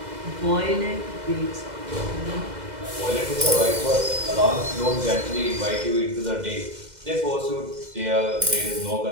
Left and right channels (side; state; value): left; late; 2.0 ms